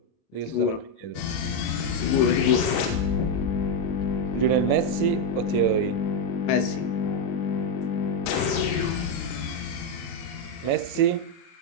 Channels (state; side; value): late; right; 29 ms